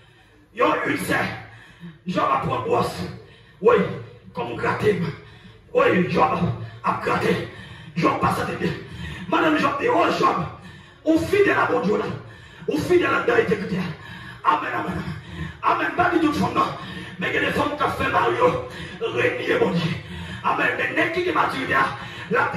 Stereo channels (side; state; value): both; identical; correlation 1.00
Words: Il y a une serre. Jean va prendre brosse. Oui, comme gratter. Oui, Jean a gratté. Jean passe à bien. Madame Jean dit, oh Jean, on fidèle à mon Dieu là. On fidèle à la intégrité. Amen, amen. Amen. Pas du tout de fond, non. Mais il y a des femmes qui ont fait Mario, régner mon Dieu. Amen. Mais n'est-ce qui est maturité, là,